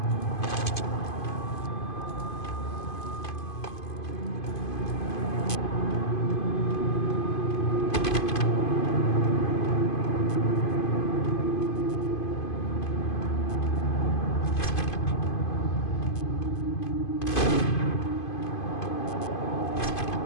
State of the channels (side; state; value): right; late; 2.5 ms